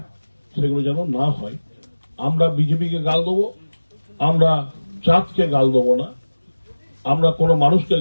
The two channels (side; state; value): both; inverted; correlation -1.00